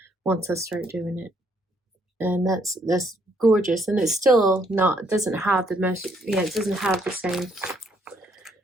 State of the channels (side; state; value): both; normal; correlation 0.69